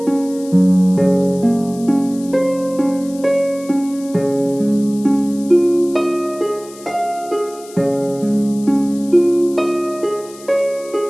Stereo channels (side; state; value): left; noise; hiss, 20 dB below the sound